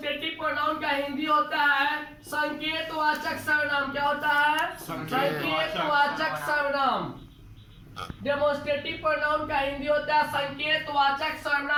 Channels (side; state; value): both; identical; correlation 1.00